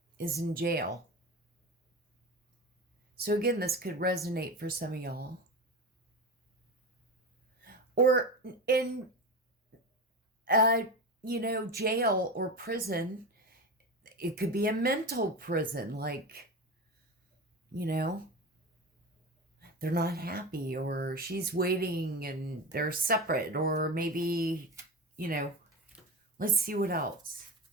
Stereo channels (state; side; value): normal; both; correlation 0.25